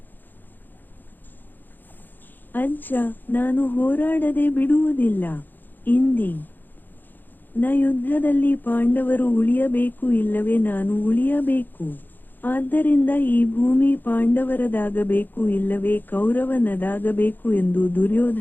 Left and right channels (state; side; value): late; right; 0.088 ms